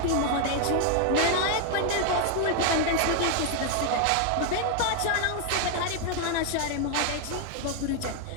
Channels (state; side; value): different; both; correlation 0.00